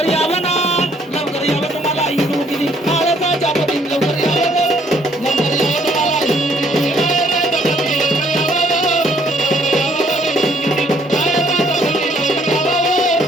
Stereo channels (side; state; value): both; normal; correlation 0.65